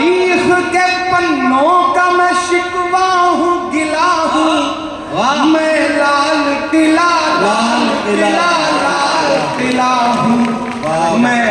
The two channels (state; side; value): identical; both; correlation 1.00